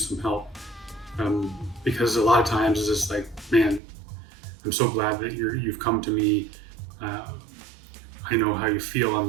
some help. Because a lot of times it's just like, man, I'm so glad that you've come to me. I know how you feel.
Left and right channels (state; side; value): drops out; left; at 3.8 s